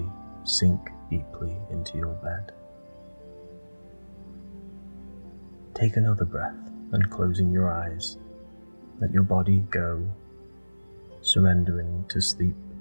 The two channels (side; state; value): both; inverted; correlation -1.00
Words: sink deeply into your bed. Take another breath and closing your eyes, let your body go, surrendering to sleep,